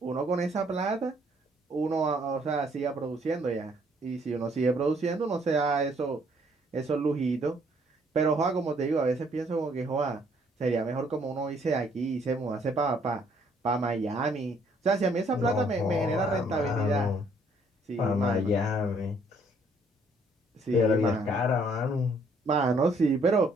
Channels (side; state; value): both; normal; correlation 0.65